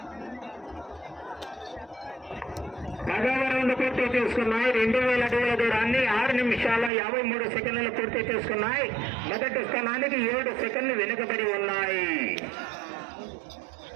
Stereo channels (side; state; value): left; drops out; at 6.9 s